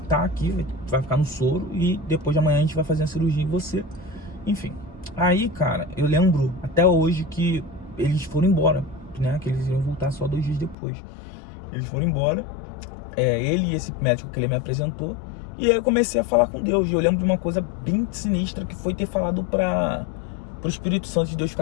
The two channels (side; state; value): right; drops out; at 10.8 s